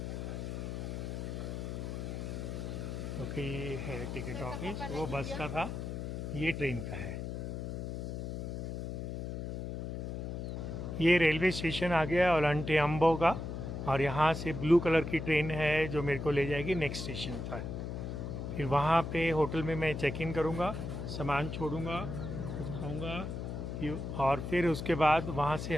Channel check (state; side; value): noise; left; hum, 5 dB below the sound